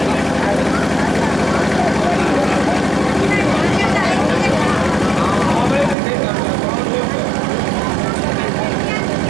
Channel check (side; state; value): left; drops out; at 6.0 s